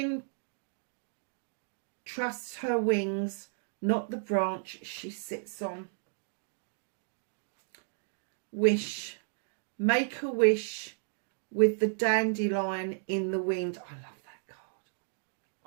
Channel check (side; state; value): left; silent; digital silence